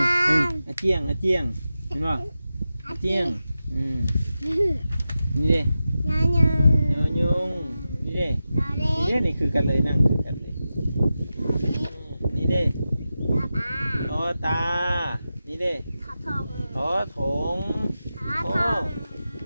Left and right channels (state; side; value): inverted; both; correlation -0.92